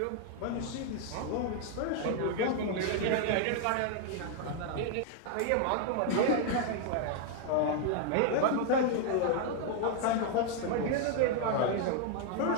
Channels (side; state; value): both; different; correlation 0.00